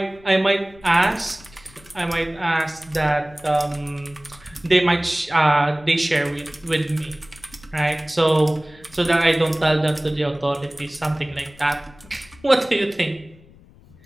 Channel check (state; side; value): noise; left; rumble, 25 dB below the sound